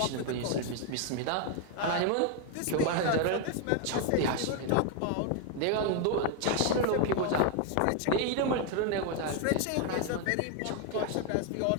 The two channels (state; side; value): different; both; correlation 0.01